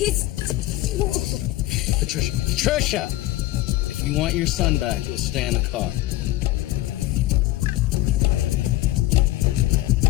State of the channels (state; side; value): quieter; right; 16.4 dB